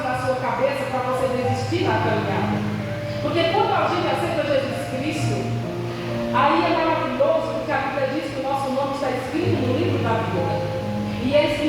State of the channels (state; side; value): identical; both; correlation 1.00